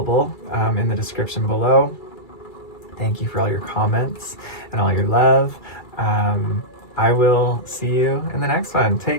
in the description below. Thank you for all your comments and all your love. I will see you in the next one.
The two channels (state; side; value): late; right; 2.3 ms